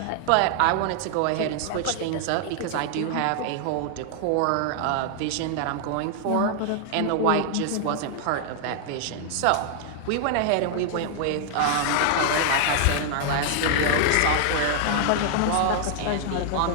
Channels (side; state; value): both; different; correlation 0.00